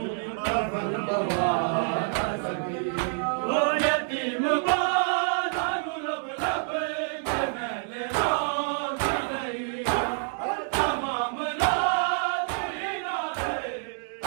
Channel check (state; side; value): silent; left; 60 dB below the other